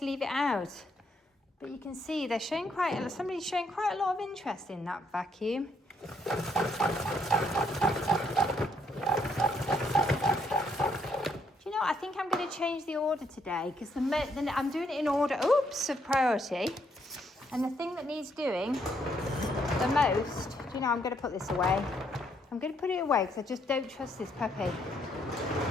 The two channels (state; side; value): normal; both; correlation 0.72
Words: leave it out. But you can see they're showing somebody's showing quite a lot of interest in that vacuum. Do you know, I think I'm going to change the order today, because I'm doing it in order, of priority. And the thing that needs doing the most, do you know, I'm going to put this away. I'm going to put it away, because I just don't trust this puppy.